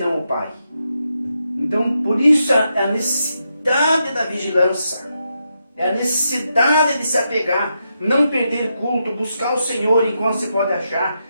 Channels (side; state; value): both; inverted; correlation -0.83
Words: o Pai. Então, por isso a necessidade da vigilância, é a necessidade de se apegar, não perder culto, buscar o Senhor enquanto se pode achar,